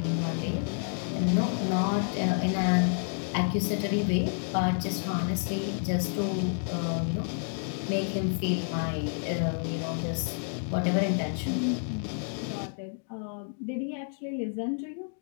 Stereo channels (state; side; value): silent; right; 58 dB below the other